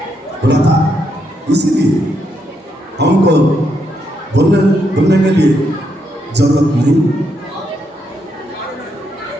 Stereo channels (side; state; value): both; normal; correlation 0.78